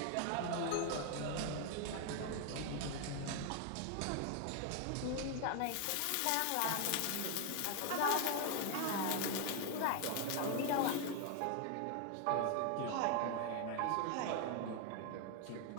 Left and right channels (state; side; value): different; both; correlation 0.00